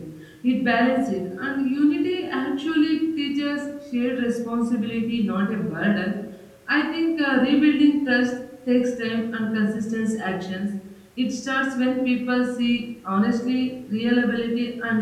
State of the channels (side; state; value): both; identical; correlation 1.00